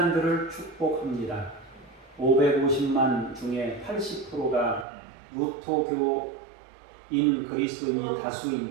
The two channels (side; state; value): left; drops out; at 4.9 s